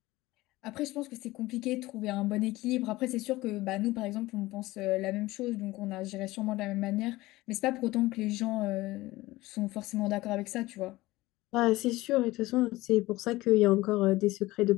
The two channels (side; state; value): right; quieter; 18.8 dB